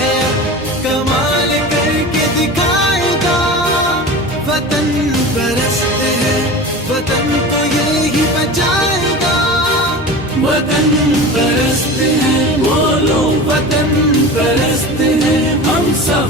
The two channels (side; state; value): both; normal; correlation 0.32